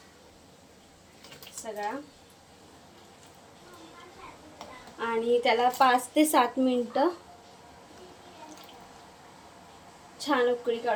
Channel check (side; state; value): both; identical; correlation 1.00